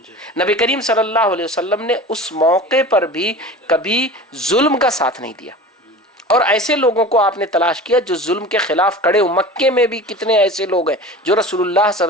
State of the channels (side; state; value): both; normal; correlation 0.36